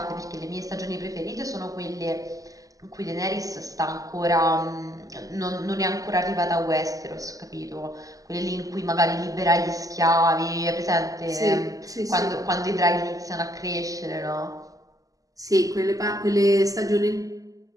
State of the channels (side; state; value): left; late; 0.17 ms